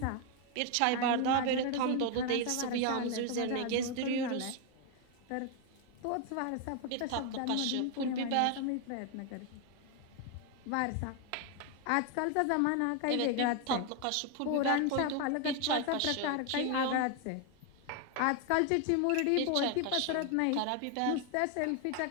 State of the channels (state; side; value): different; both; correlation 0.01